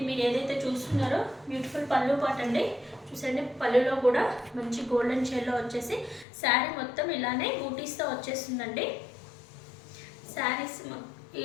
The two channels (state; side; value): drops out; right; at 6.2 s